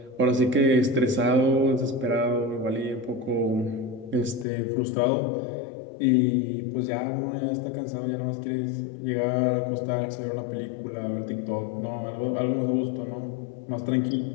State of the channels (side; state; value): right; drops out; at 4.5 s